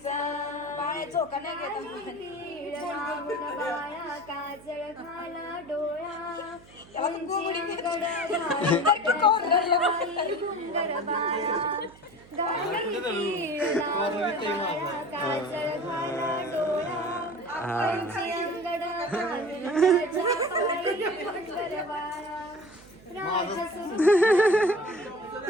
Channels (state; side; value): noise; right; hum, 24 dB below the sound